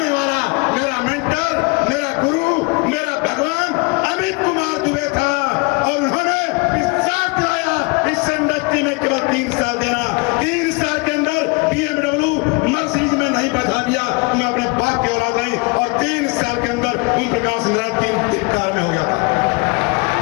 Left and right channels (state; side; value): quieter; right; 28.7 dB